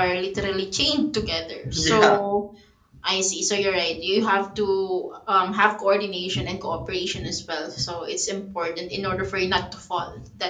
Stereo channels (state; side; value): identical; both; correlation 1.00